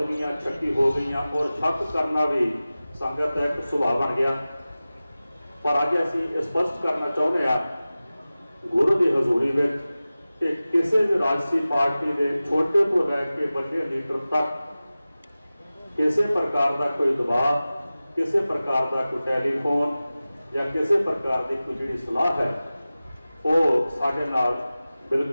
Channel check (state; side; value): inverted; both; correlation -0.96